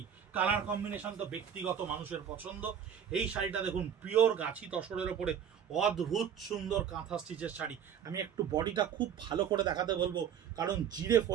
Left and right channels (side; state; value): left; quieter; 8.5 dB